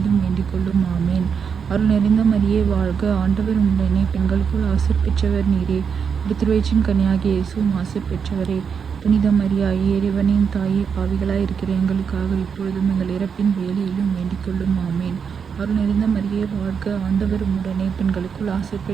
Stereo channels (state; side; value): quieter; left; 6.6 dB